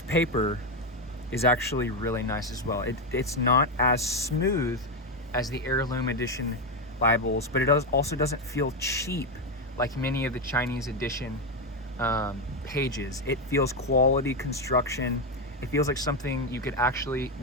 paper is actually really nice as well. It's not as smooth as the Heirloom Edition Bibles, but it also doesn't feel cheap like many of the Chinese edition pages. It feels quality construction. It feels like something you could actually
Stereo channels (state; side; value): normal; both; correlation 0.08